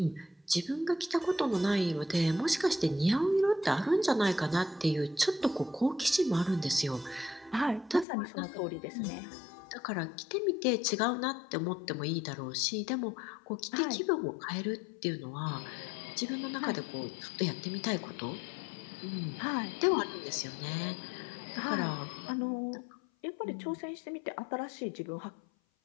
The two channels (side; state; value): right; drops out; at 8.1 s